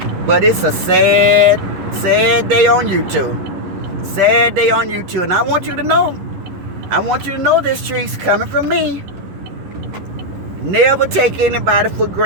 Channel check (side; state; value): left; late; 11 ms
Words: But it's a sad day on YouTube. Sad day on YouTube. And I want you to know. I want you to know this, Trese, coming from me. Never take anybody for